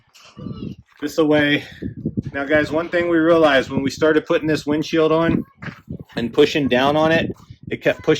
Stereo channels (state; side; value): identical; both; correlation 1.00